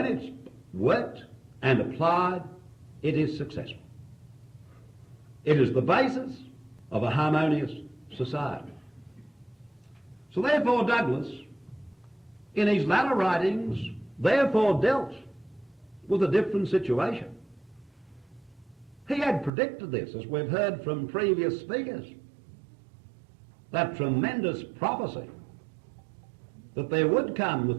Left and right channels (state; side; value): drops out; left; at 19.5 s